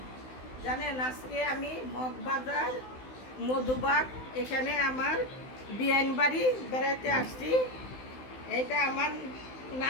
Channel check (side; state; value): right; late; 16 ms